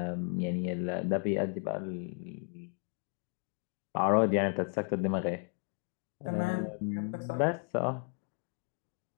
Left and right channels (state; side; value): quieter; right; 39.4 dB